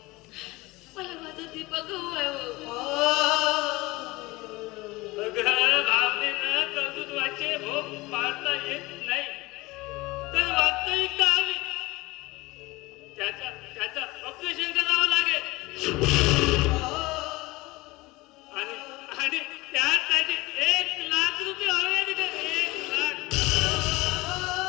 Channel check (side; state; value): right; quieter; 21.5 dB